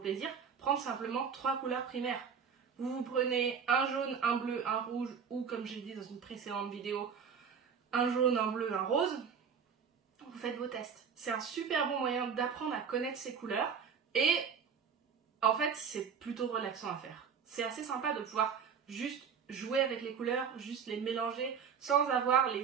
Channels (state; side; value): quieter; left; 6.7 dB